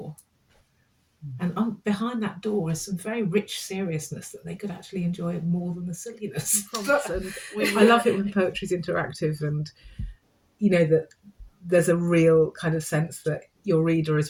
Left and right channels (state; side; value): identical; both; correlation 1.00